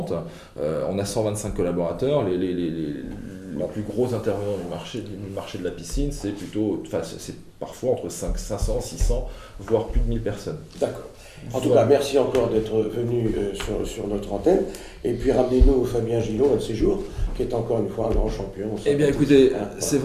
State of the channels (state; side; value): identical; both; correlation 1.00